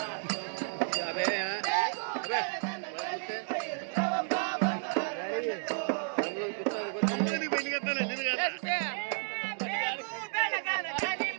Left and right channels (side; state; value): left; silent; 56 dB below the other